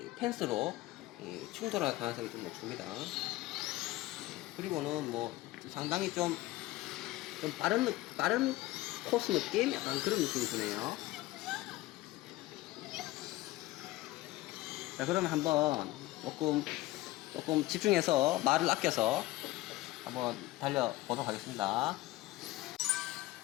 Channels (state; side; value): quieter; right; 17.8 dB